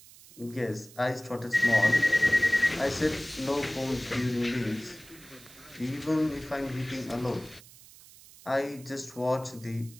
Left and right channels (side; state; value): right; noise; hiss, 21 dB below the sound